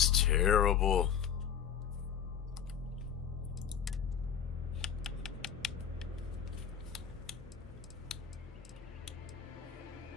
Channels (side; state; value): right; quieter; 8.2 dB